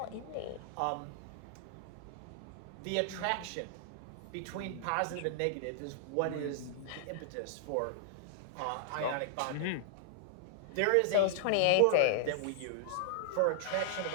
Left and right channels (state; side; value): different; both; correlation -0.01